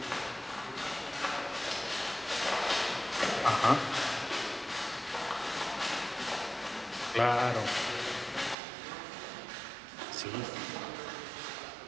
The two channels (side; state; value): left; drops out; at 8.6 s